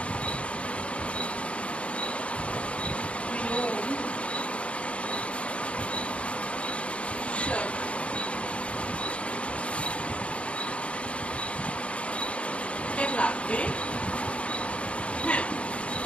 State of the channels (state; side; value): late; right; 0.061 ms